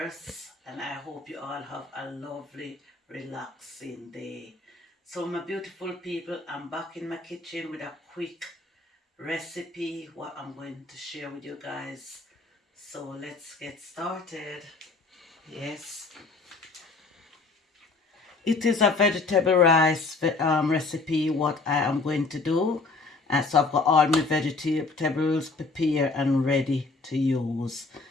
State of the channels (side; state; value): right; quieter; 3.8 dB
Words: And I hope you all have a lovely, relaxing day. So, my beautiful people, I'm back in my kitchen with a quick recipe what I'm going to share with you guys. So, let's get started. Yes. It is a vegetable rice recipe what I am going to do. So I've got all my vegetables prepared and ready to use.